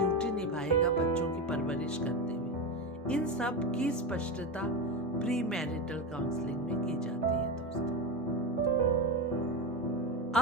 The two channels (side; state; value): both; normal; correlation 0.17